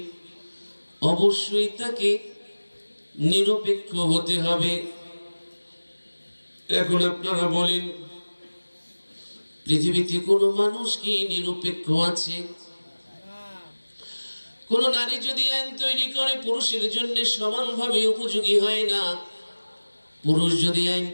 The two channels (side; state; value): both; inverted; correlation -1.00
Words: অবশ্যই তাকে নিরপেক্ষ হতে হবে। এখন আপনারা বলেন, পৃথিবীতে কোনো মানুষ কি নিরপেক্ষ আছে? কোন নারী যদি আইন তৈরি করে পুরুষের জন্য সমানভাবে উপযোগী হয় না, পুরুষ যদি আইন